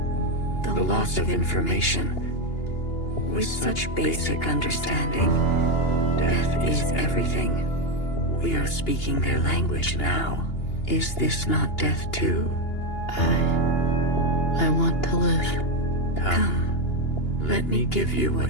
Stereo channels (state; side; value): late; right; 2.8 ms